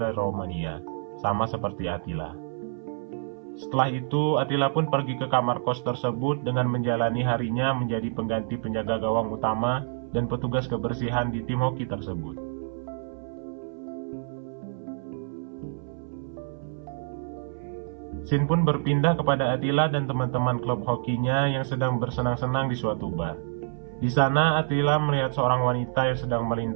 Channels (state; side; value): silent; left; 60 dB below the other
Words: dari Romania, sama seperti Attila. Setelah itu, Attila pun pergi ke kamar kos tersebut dengan menjalani harinya menjadi pengganti penjaga gawang utama dan petugas kebersihan di tim hoki tersebut. Scene pun berpindah kepada Attila dan teman-teman klub hokinya yang sedang bersenang-senang di suatu bar. Di sana, Attila melihat seorang wanita yang sedang